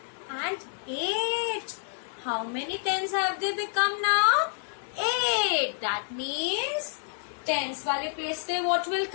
and 8. How many tens have they become now? 8. That means tens wale place pe what will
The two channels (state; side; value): silent; right; digital silence